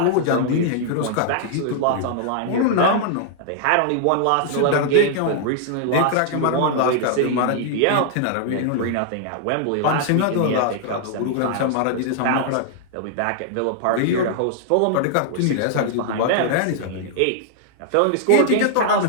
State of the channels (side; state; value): both; different; correlation -0.01